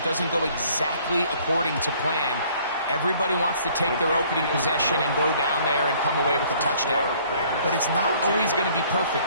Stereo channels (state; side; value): inverted; both; correlation -0.58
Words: doesn't go exactly according to plan, everybody wants to take their opening possession and go down there and come away with a touchdown. But it's not always going to be